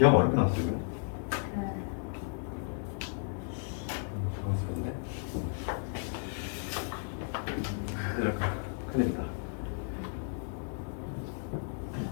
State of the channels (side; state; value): right; silent; 55 dB below the other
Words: 어렵게 나왔어 지금? 네. 당황스럽네. 큰일이다.